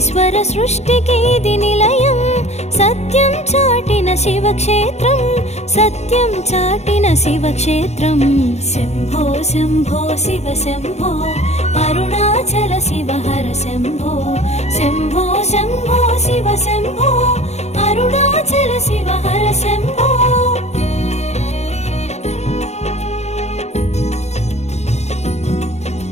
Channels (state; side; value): late; right; 0.32 ms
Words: సృష్టికి ఇది నిలయం. సత్యం చాటిన శివక్షేత్రం, సత్యం చాటిన శివక్షేత్రం. శంభో శంభో శివ శంభో, అరుణాచల శివ హర శంభో. శంభో శంభో శివ శంభో, అరుణాచల శివ హర శంభో.